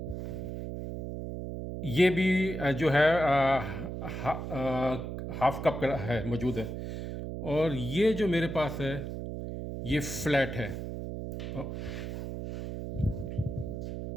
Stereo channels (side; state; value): right; noise; hum, 6 dB below the sound